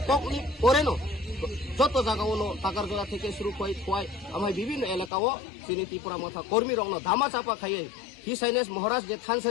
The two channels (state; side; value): drops out; right; at 5.1 s